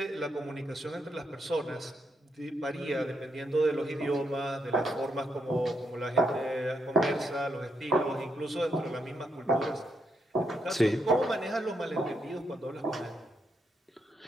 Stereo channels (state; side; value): normal; both; correlation 0.80